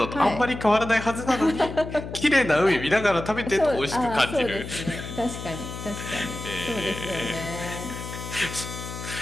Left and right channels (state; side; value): noise; left; hum, 9 dB below the sound